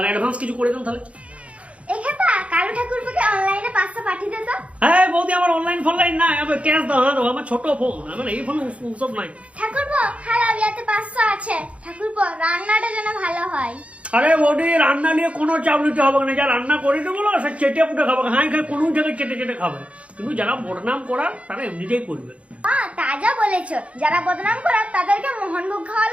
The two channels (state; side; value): late; left; 0.063 ms